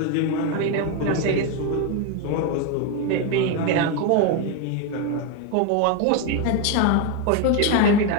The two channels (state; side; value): different; both; correlation 0.02